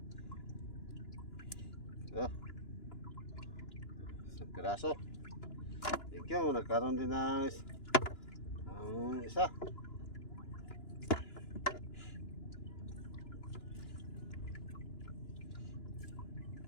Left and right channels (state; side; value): late; right; 2.9 ms